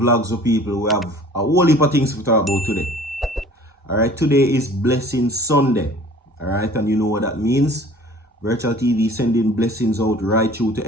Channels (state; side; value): normal; both; correlation 0.48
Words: of People. We have a whole heap of things to talk about today. Alright, today is Blessing Sunday. Alright, and you know what that means. Virtual TV sending blessings out right through to